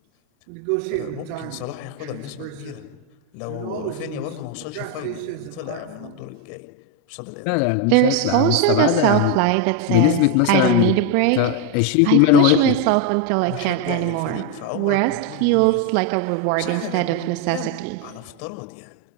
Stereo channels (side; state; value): both; different; correlation 0.02